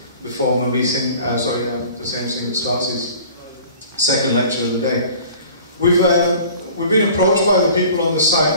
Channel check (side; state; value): both; inverted; correlation -0.47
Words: before my meeting. The same thing that starts his second lecture of the day. We've been approached by the people on the